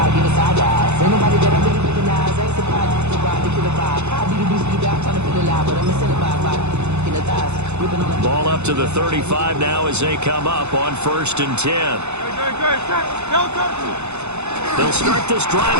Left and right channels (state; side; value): late; left; 0.81 ms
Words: Ball up to the 35 now as they come up on 1st and 10. They'll start this drive